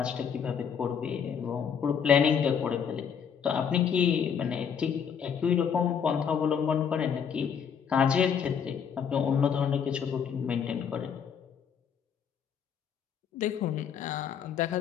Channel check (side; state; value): right; quieter; 7.4 dB